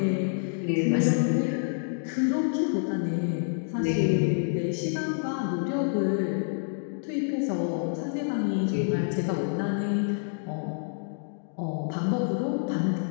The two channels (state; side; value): silent; right; digital silence